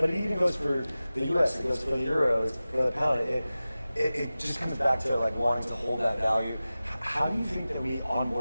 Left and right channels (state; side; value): inverted; both; correlation -0.96